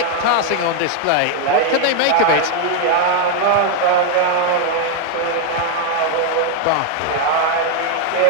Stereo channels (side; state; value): both; different; correlation 0.01